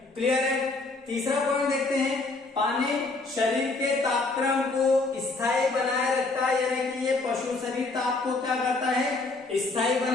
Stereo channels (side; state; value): right; quieter; 3.4 dB